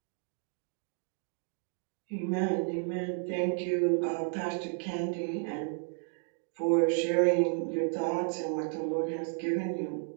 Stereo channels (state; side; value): silent; left; 56 dB below the other